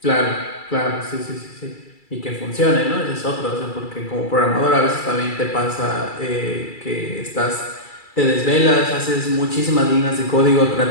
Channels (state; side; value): late; right; 2.3 ms